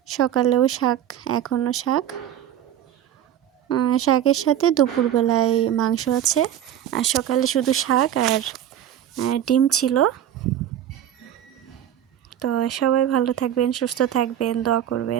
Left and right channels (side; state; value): left; quieter; 10.8 dB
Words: সকালেও শাক, এখনও শাক। শাকের সাথে দুপুরবেলায় মাংস আছে, আর সকালে শুধু শাক আর ডিম ছিল। তো সবাই ভালো থাকবেন, সুস্থ থাকবেন, দোয়া